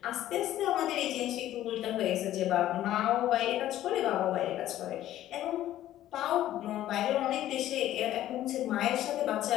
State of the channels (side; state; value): right; quieter; 13.2 dB